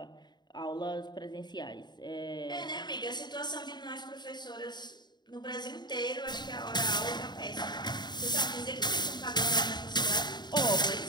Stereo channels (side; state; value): right; late; 0.21 ms